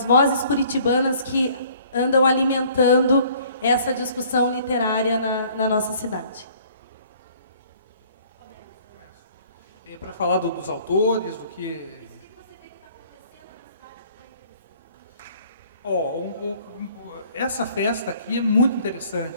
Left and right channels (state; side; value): inverted; both; correlation -0.57